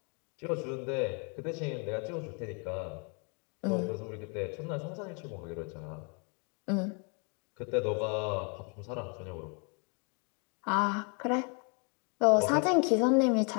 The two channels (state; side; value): quieter; right; 36.2 dB